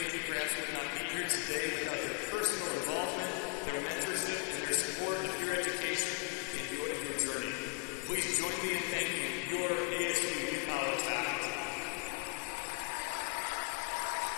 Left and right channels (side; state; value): right; quieter; 36.8 dB